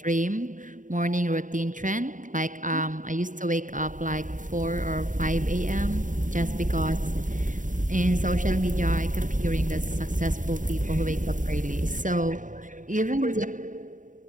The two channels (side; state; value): left; late; 0.38 ms